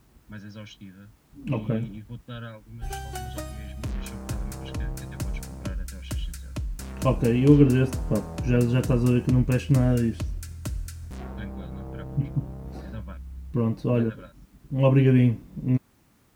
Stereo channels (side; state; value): both; identical; correlation 1.00